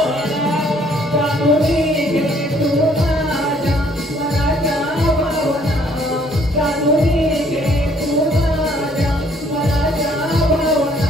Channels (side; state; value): both; normal; correlation 0.62